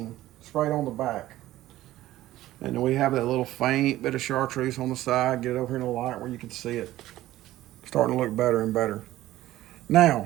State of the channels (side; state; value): left; quieter; 15.2 dB